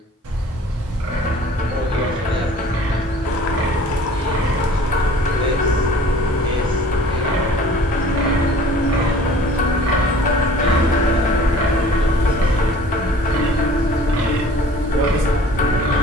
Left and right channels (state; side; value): normal; both; correlation 0.49